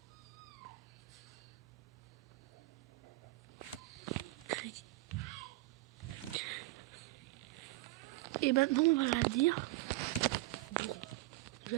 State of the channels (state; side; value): quieter; left; 19.6 dB